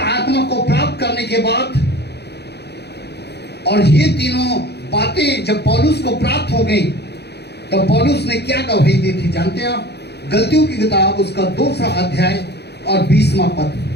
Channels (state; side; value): late; right; 0.48 ms